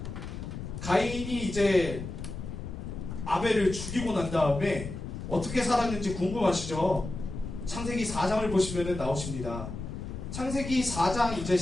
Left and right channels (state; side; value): noise; left; rumble, 7 dB below the sound